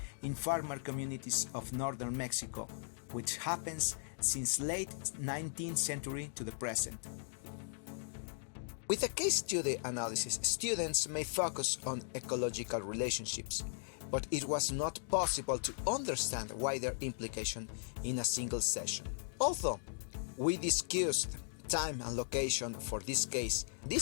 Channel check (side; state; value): right; silent; digital silence